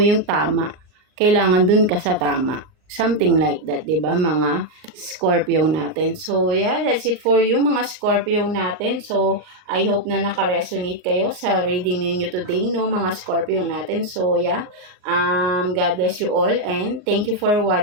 tama. Kailangan dun ka sa tama. Something like that, diba, mga Scorpio natin. So, that's it for you, mga Scorpio natin. So, I hope na naka-resonate kayo sa reading ninyo today, no, mga Scorpio natin. So, God bless you all and thank you for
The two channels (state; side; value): late; left; 38 ms